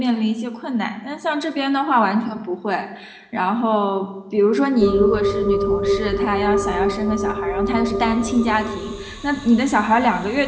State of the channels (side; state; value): both; identical; correlation 1.00